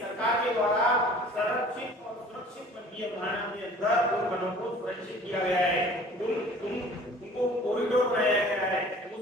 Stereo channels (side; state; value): both; normal; correlation 0.48